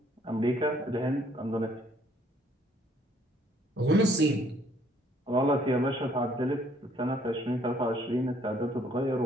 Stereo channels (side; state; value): both; normal; correlation 0.63